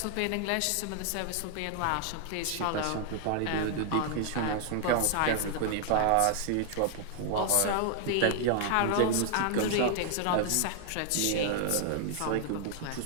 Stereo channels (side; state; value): both; different; correlation 0.00